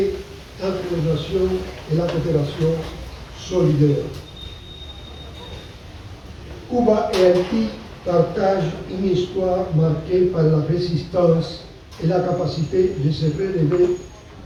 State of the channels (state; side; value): identical; both; correlation 1.00